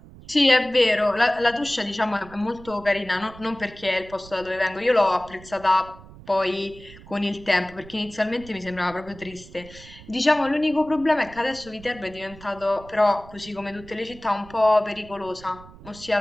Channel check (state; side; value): noise; right; rumble, 19 dB below the sound